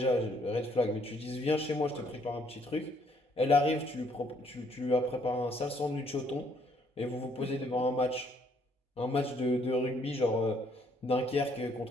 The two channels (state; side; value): normal; both; correlation 0.67